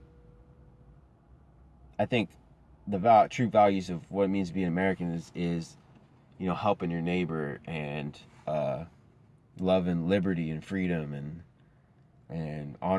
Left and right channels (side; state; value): both; identical; correlation 1.00